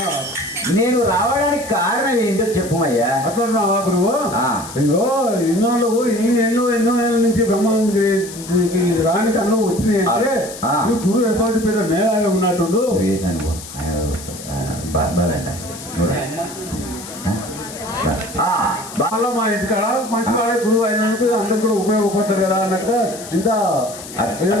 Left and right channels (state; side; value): noise; left; hiss, 13 dB below the sound